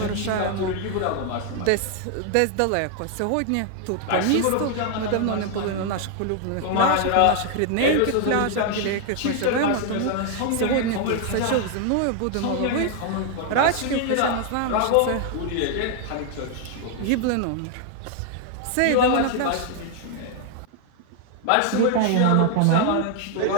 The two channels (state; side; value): different; both; correlation 0.00